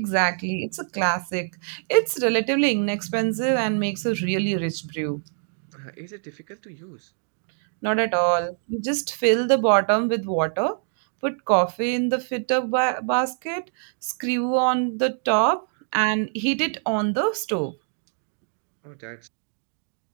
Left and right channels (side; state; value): left; silent; digital silence